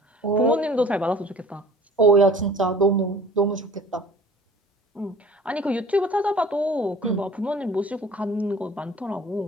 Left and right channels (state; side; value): normal; both; correlation 0.48